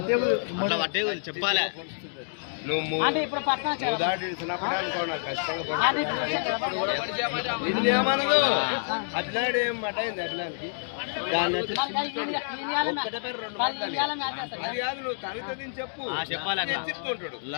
చెప్పాలి. అంటే ఇప్పుడు పట్టణం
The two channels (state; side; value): silent; right; digital silence